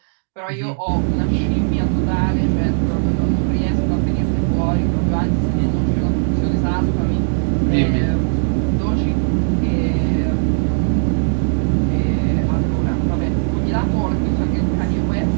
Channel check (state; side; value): silent; left; digital silence